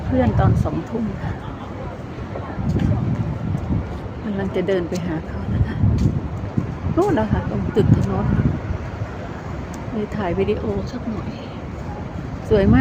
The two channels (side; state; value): both; identical; correlation 1.00